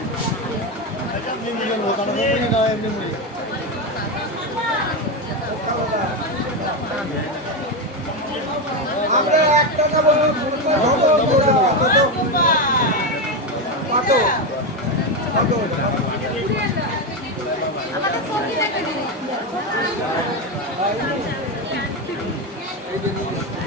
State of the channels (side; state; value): both; normal; correlation 0.11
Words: আমরা একটা নেবো কত আমাদের সবজি দেখে দিন